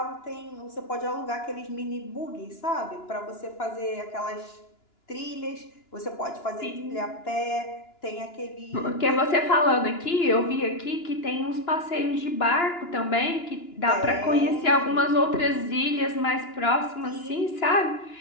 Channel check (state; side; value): late; right; 2.9 ms